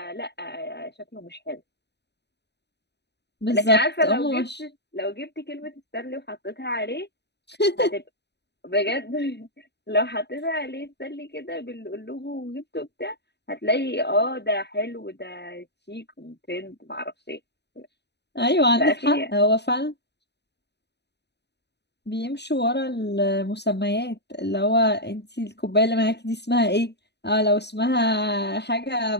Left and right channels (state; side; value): late; right; 0.49 ms